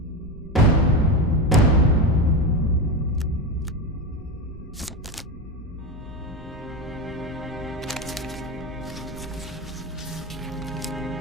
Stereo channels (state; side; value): normal; both; correlation 0.18